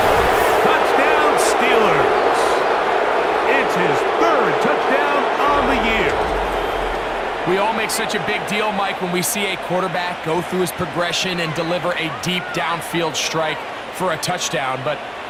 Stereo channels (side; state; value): both; identical; correlation 1.00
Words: Touchdown, Steelers. It's his third touchdown on the year. We all make such a big deal, Mike, when we see a quarterback go through his progression and deliver a deep downfield strike for a touchdown. But